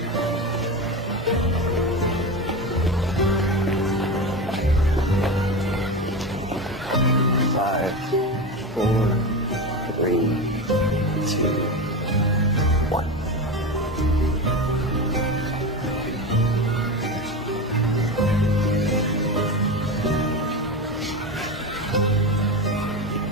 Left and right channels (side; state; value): both; normal; correlation 0.22